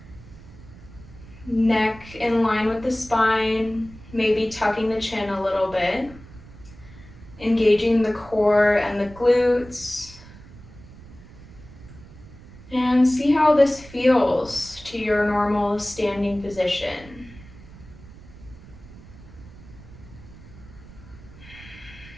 neck in line with the spine, maybe tucking the chin a little bit, engaging the core and the glutes, and see how this feels to your normal standing position.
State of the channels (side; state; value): right; noise; rumble, 19 dB below the sound